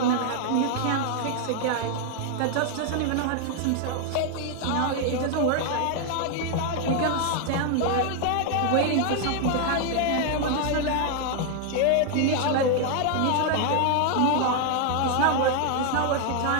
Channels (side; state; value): both; different; correlation 0.00